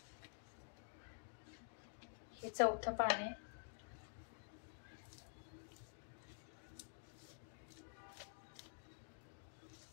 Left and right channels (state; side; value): silent; right; digital silence